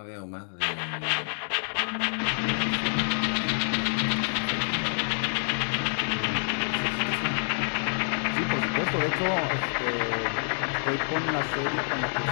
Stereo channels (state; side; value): silent; right; digital silence